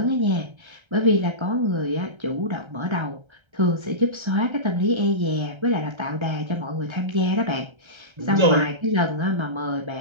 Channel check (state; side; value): late; left; 1.3 ms